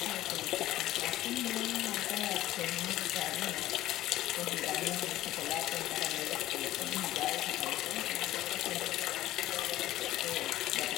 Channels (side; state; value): right; quieter; 14.9 dB